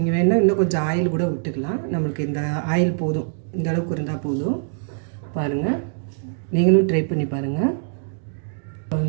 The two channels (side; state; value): left; silent; digital silence